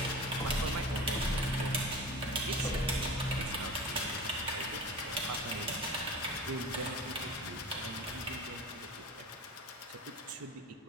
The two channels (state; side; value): normal; both; correlation 0.35